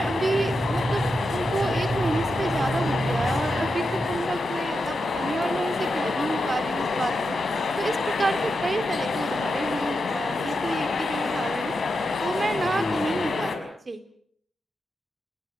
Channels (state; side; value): normal; both; correlation 0.87